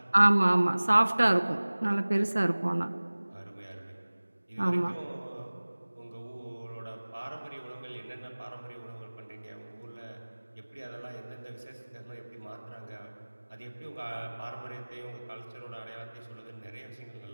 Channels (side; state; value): both; inverted; correlation -1.00